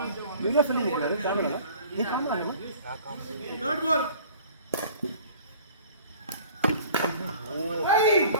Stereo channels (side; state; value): both; inverted; correlation -0.48